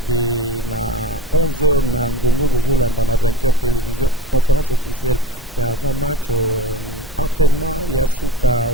na 11h na ngongo bozolanda na 20h télévision conférence officielle ya avant match entraînement ya suka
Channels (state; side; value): normal; both; correlation 0.35